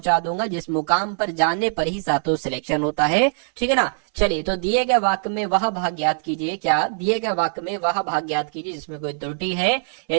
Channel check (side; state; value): left; silent; 60 dB below the other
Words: दूंगा जिस मुकाम पर जाने पर ही साथों सिलेक्शन होता है, ठीक है ना। चलिए, तो दिए गए वाक्य में वह भाग ज्ञात कीजिए। क्या? दिए गए वाक्य में वह भाग ज्ञात कीजिए जिसमें कोई त्रुटि है।